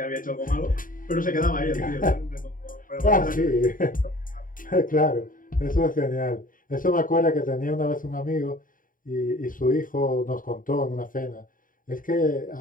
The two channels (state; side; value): late; right; 0.40 ms